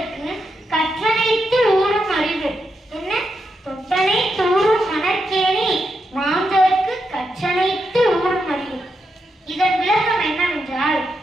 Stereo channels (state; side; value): normal; both; correlation 0.84